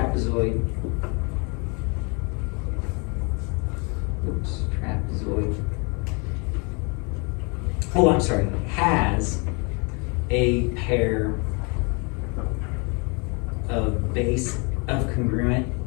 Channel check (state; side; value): quieter; right; 32.3 dB